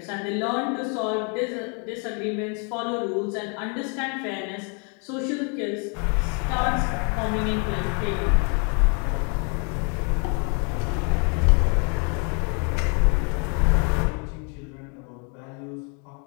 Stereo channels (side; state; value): right; quieter; 37.3 dB